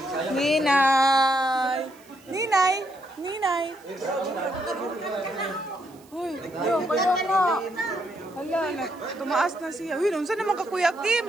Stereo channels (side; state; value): right; noise; hiss, 28 dB below the sound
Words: Ninay! Ninay! Ninay! Uy, yung kaya nga. Hala, tumaas na siya. Uy, saan naman ka, Kuya Kim?